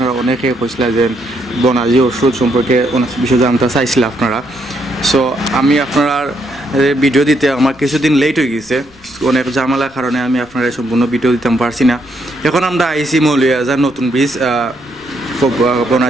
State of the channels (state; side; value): noise; left; rumble, 28 dB below the sound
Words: অনেকে কইছিলেন যে বনাজি ওষুধ সম্পর্কে অনেক বিষয় জানতে চাইছিলেন আপনারা। সো আমি আপনার ভিডিও দিতে আমার কিছুদিন লেট হয়ে গেছে, অনেক ঝামেলার কারণে আমি আপনারা সম্পূর্ণ ভিডিও দিতে পারছি না। এখন আমরা আইসি মৌলিয়াজার নতুন বীজ